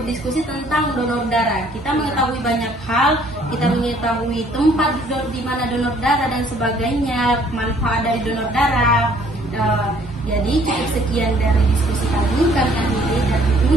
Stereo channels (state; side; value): normal; both; correlation 0.60